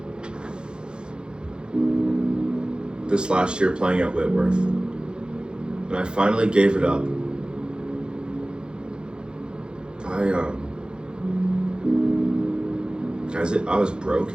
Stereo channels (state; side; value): late; left; 0.049 ms